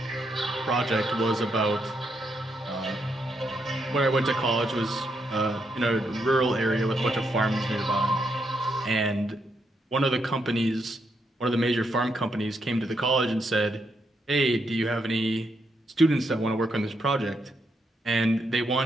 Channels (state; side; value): normal; both; correlation 0.79